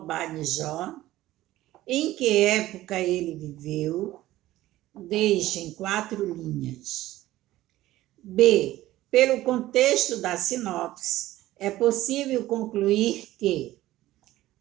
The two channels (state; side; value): quieter; left; 15.7 dB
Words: Em que época ele viveu? Deixe em 4 linhas. B. Pelo contexto da sinopse, é possível concluir que